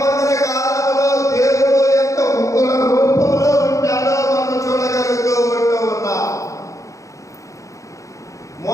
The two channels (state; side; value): late; right; 0.15 ms